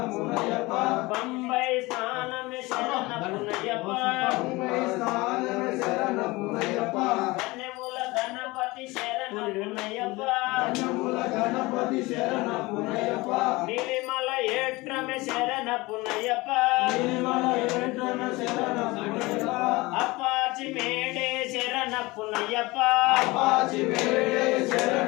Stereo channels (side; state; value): right; quieter; 22.1 dB